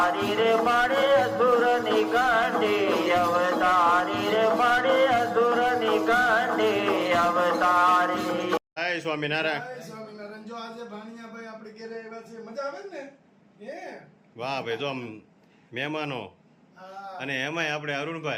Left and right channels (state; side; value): identical; both; correlation 1.00